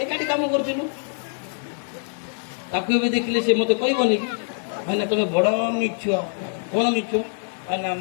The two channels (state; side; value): silent; right; 58 dB below the other